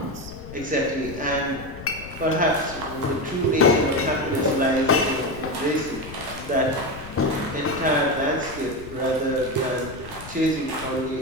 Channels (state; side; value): noise; left; rumble, 14 dB below the sound